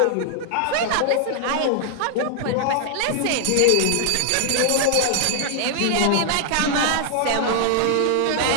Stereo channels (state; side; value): different; both; correlation 0.00